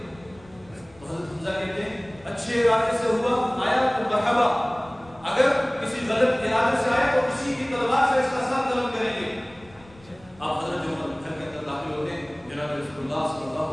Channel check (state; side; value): noise; left; rumble, 25 dB below the sound